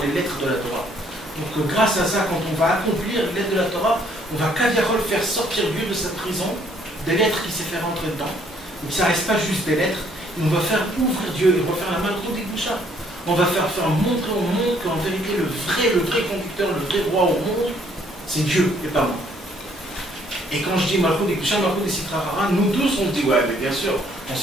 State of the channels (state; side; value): normal; both; correlation 0.64